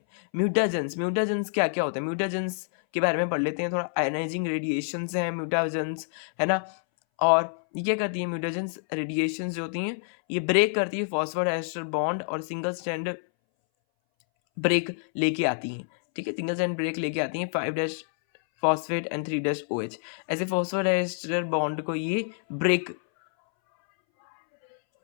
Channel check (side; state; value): right; silent; 60 dB below the other